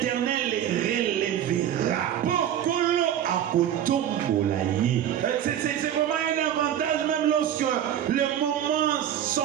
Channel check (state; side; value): quieter; left; 10.4 dB